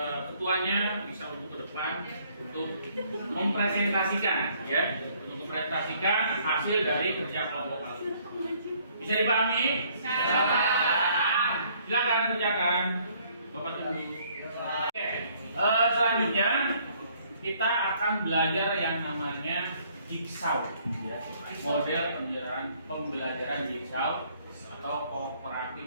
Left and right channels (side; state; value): both; inverted; correlation -0.63